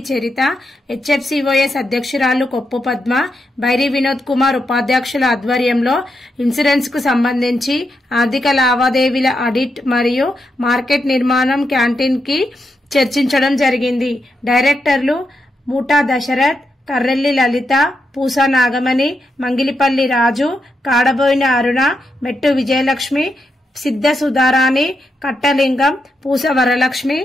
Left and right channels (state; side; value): normal; both; correlation 0.84